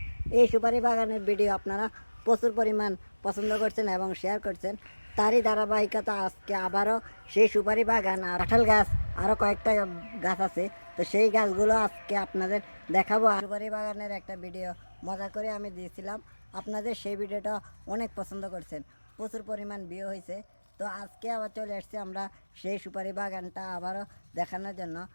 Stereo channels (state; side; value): inverted; both; correlation -1.00